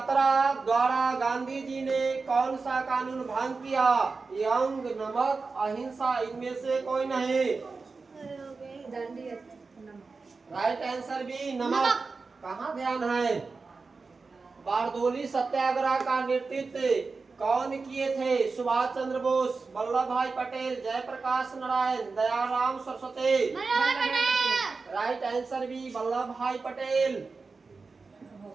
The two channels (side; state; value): left; quieter; 4.3 dB